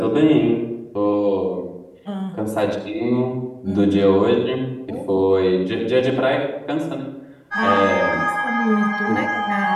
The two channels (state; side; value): identical; both; correlation 1.00